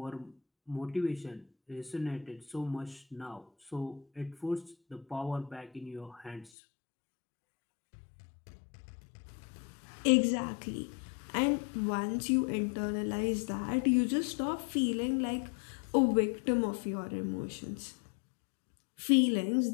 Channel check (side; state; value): right; drops out; at 6.5 s